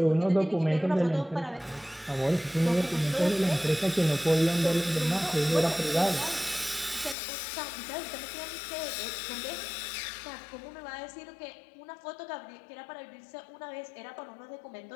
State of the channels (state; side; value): drops out; right; at 7.2 s